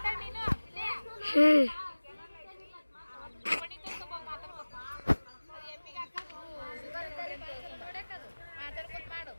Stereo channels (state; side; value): inverted; both; correlation -1.00